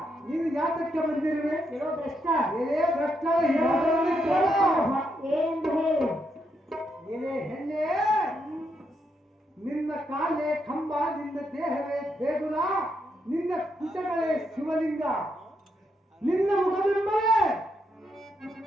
ನೀನು ಯಾತಕ್ಕೆ ಬಂದಿರುವೆ? ಲೋ ಭ್ರಷ್ಟ, ಎಲೆ ಭ್ರಷ್ಟ, ಹೇಳುವುದನ್ನು ಕೇಳು. ಏನೆಂದು ಹೇಳಿ. ಎಲೆ ಹೆಣ್ಣೆ, ನಿನ್ನ ಕಾಲೇ ಕಂಬ, ನಿನ್ನ ದೇಹವೇ ದೇಗುಲ, ನಿನ್ನ ಕುಟಗಳೇ ಶಿವಲಿಂಗ, ನಿನ್ನ ಮುಖಬಿಂಬವೇ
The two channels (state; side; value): normal; both; correlation 0.79